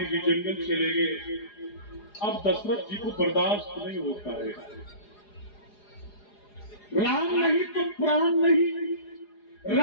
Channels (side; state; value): right; late; 4.9 ms